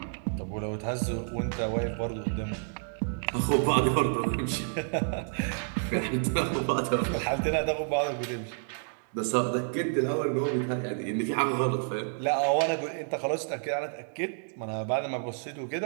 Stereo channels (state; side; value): silent; left; digital silence